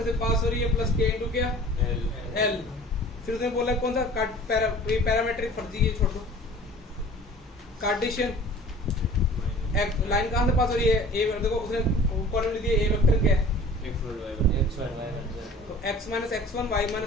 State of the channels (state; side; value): normal; both; correlation 0.45